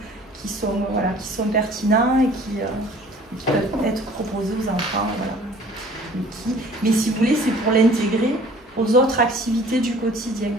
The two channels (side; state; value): both; normal; correlation 0.51